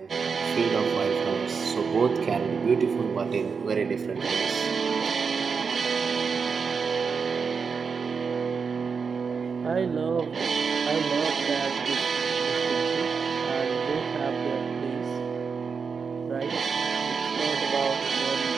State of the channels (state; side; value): quieter; left; 5.6 dB